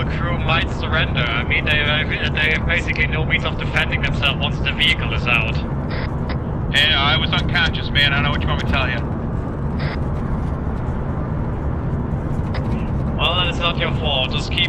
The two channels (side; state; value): both; identical; correlation 1.00